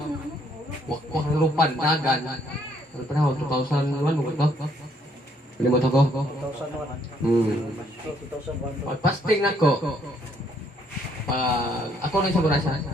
wakwak ng lupan, dagan. Ano panahon, 2001 mo ito? Pilimot ako? 2001. Pag fasting na ko, pag ako nang sa Burasa,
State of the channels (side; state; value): both; normal; correlation 0.68